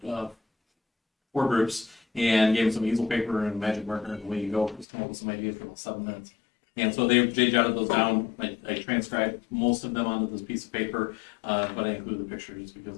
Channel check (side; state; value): right; drops out; at 4.9 s